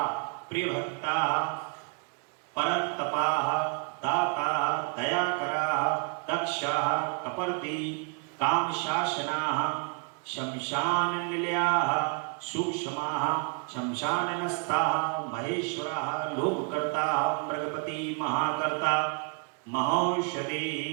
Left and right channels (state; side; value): quieter; left; 37.6 dB